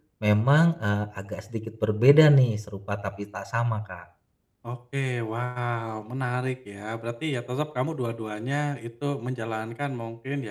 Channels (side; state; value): both; identical; correlation 1.00